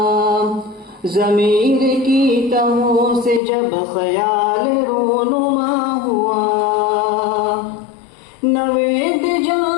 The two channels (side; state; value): right; drops out; at 3.4 s